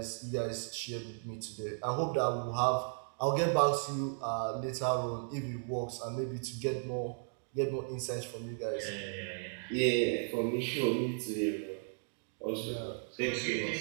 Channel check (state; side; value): silent; left; digital silence